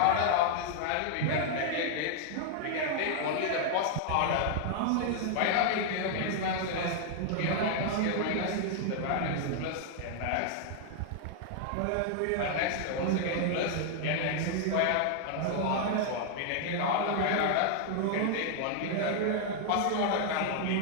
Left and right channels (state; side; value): different; both; correlation 0.00